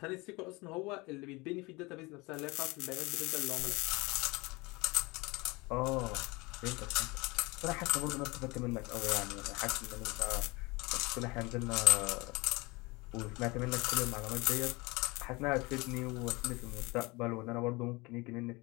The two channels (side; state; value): right; quieter; 24.4 dB